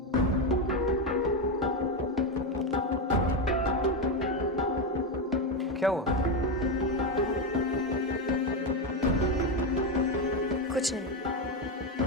क्या हुआ? कुछ नहीं।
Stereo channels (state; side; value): normal; both; correlation 0.10